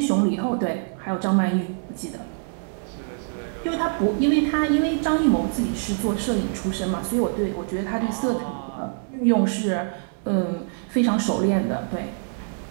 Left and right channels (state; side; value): silent; left; 58 dB below the other